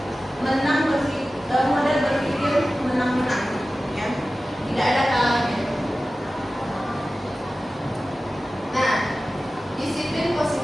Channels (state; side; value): normal; both; correlation 0.95